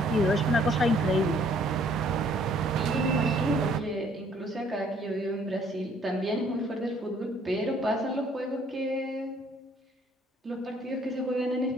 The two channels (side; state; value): both; normal; correlation 0.62